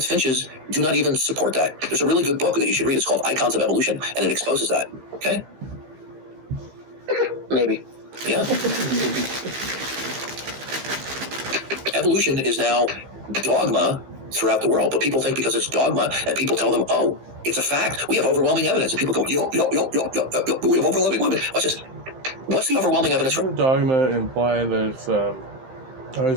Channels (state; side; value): late; left; 15 ms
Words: finches do not even support that. There's a really good book that you should read. It's called Icons of Evolution, and it exposes that. Okay? Maybe. Yeah. Evolution is now dogma throughout the world, but people think because it's dogma, and people tell them, oh, it's a fact. We have overwhelming evidence. And people go, yo, we have overwhelming evidence. Watch this. What's the overwhelming evidence for? Dogma imply that it's, I